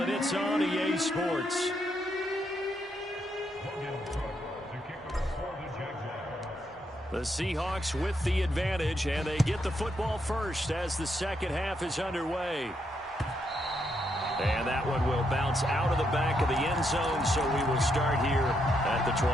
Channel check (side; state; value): both; normal; correlation 0.78